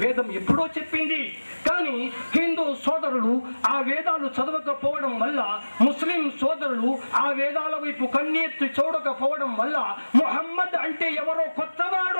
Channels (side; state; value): both; inverted; correlation -1.00